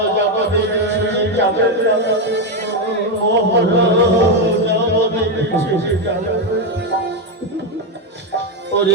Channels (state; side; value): normal; both; correlation 0.06